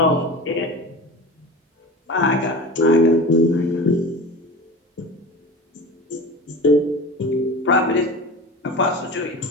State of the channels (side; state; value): both; normal; correlation 0.33